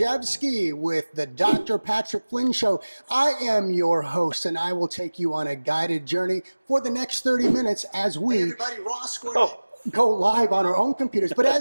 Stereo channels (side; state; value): both; inverted; correlation -1.00